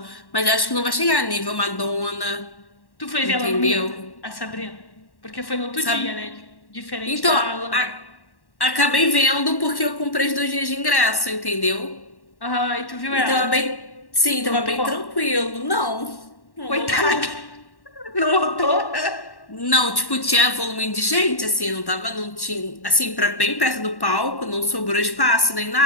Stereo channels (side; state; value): right; late; 1.1 ms